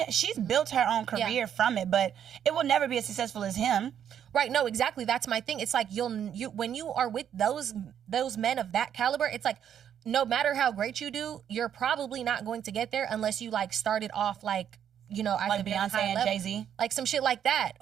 built her own career from it, but it will never be as successful as him. Right? No, exactly. That's my thing. It's like you when you are with those men of that caliber, it's like, no matter how great you do, you're probably not going to get there unless you like started off like, you know, like Beyonce and Jay-Z, like some shit like that,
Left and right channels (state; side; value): quieter; left; 9.2 dB